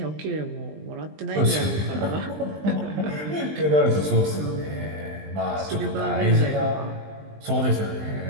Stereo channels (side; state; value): left; late; 20 ms